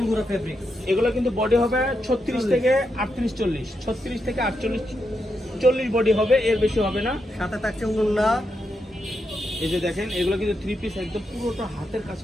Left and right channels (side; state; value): both; normal; correlation 0.84